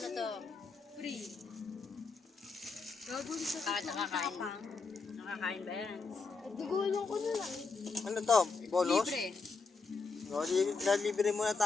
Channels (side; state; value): right; quieter; 4.4 dB